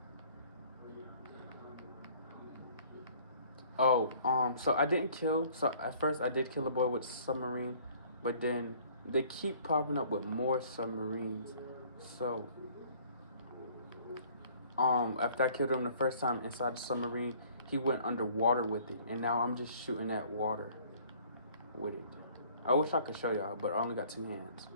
so I didn't kill. So at first I did kill a boy with submarine, but then they keep popping up with more submarines. So after I killed him the first time inside the submarine, he went underwater with it, and now I'm just shooting at water with it. I wish I could show y'all, but I only got two hands.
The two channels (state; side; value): inverted; both; correlation -0.56